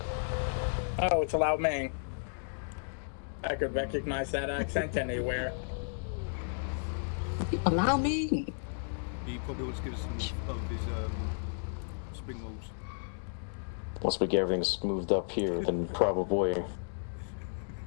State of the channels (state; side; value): silent; right; digital silence